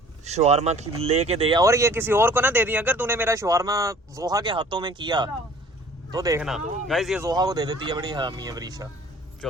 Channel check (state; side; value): normal; both; correlation 0.51